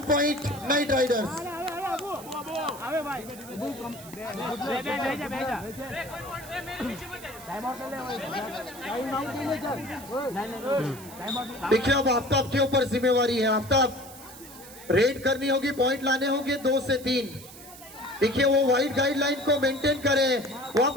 पॉइंट नाइट राइडर्स। देखिए अब आफ्ताब के ऊपर जिम्मेवारी है। आफ्ताब रेड करनी होगी, पॉइंट लाने होंगे 2 से 3। देखिए वो वाइड गाइडलाइन को मेंटेन करें, वो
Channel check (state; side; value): noise; right; hiss, 17 dB below the sound